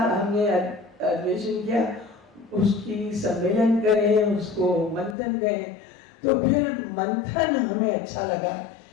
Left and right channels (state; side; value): drops out; right; at 5.2 s